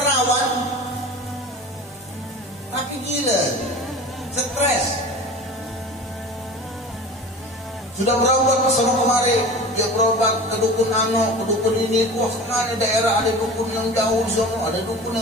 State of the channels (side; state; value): both; normal; correlation 0.36